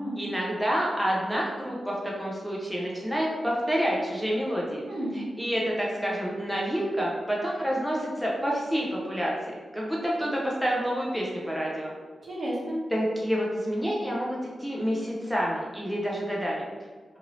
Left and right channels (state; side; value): normal; both; correlation 0.93